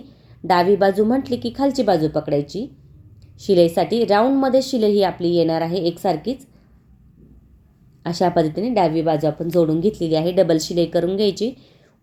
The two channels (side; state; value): both; identical; correlation 1.00